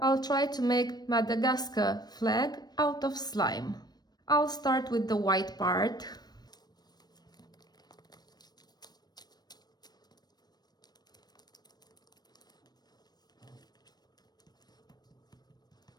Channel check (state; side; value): late; right; 0.19 ms